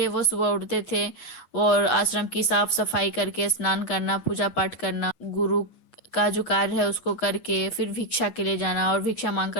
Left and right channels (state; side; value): late; right; 8.0 ms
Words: वो सुबह उठते थे और आश्रम की साफ सफाई करके स्नान करना, पूजा पाठ करना, गुरु का जो कार्य है उसको करके फिर भिक्षा के लिए जाना और भिक्षा मांग